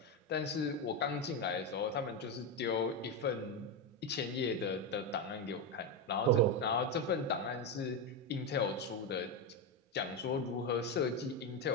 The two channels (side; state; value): both; normal; correlation 0.10